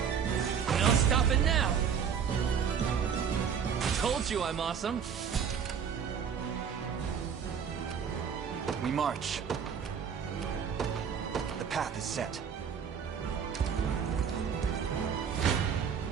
No stopping now. Told you I'm awesome. We march. The path is set.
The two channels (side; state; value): left; quieter; 7.3 dB